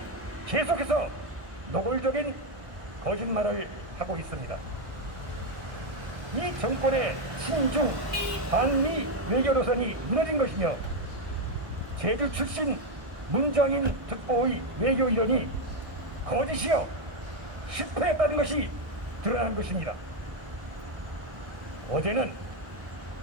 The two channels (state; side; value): late; left; 1.6 ms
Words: 계속해서 노골적인 거짓말을 하고 있습니다. 이 정권의 친중 반미 외교 노선이 무너진 것이며 제주 출신 문정인 특보의 외교 이론이 거짓이요 실패했다는 것이 드러난 것입니다. 어제는